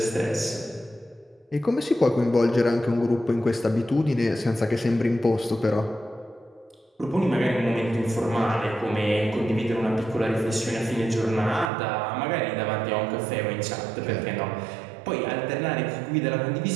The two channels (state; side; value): drops out; left; at 11.7 s